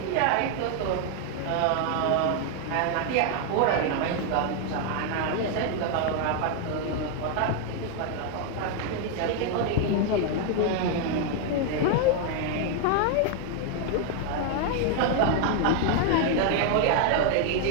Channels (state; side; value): different; both; correlation 0.00